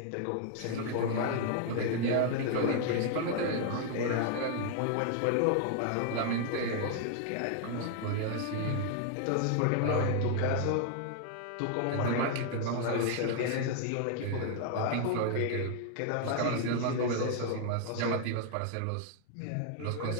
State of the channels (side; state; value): both; different; correlation 0.00